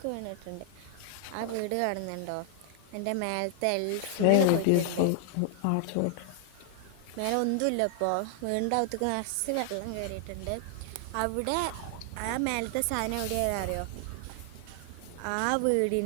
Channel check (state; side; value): different; both; correlation 0.00